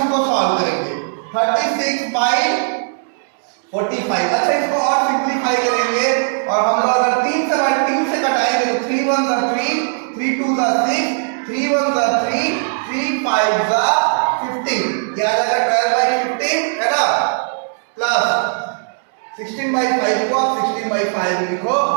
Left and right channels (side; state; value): left; silent; digital silence